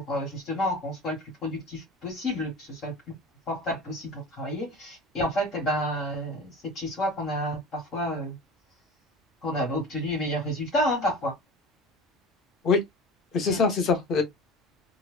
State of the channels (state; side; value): normal; both; correlation 0.34